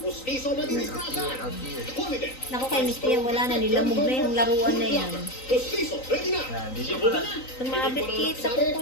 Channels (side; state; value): right; late; 3.9 ms